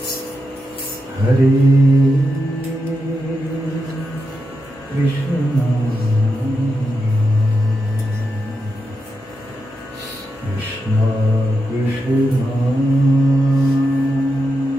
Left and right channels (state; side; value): normal; both; correlation 0.87